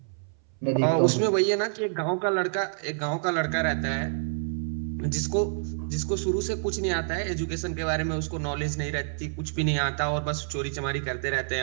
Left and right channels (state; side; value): silent; left; 60 dB below the other